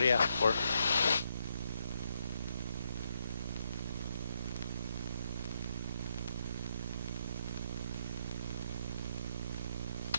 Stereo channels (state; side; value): inverted; both; correlation -0.77